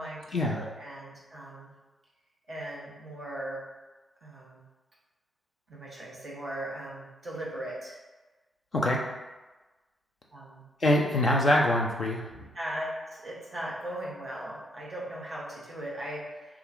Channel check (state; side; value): normal; both; correlation 0.68